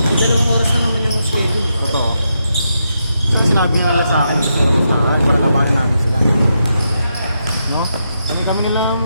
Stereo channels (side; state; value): both; inverted; correlation -0.83